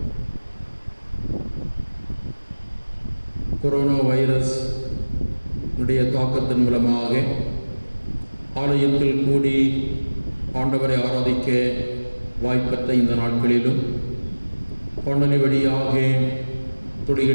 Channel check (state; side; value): inverted; both; correlation -1.00